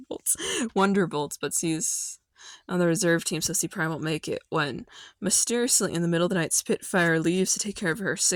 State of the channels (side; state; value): both; identical; correlation 1.00